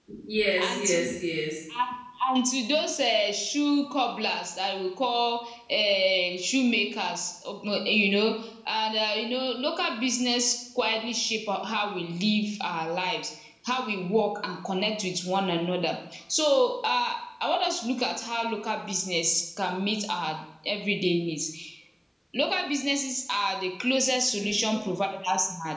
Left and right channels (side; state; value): both; identical; correlation 1.00